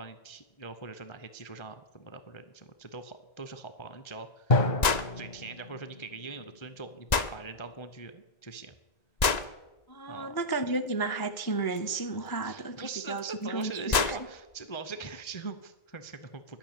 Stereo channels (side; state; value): right; late; 1.9 ms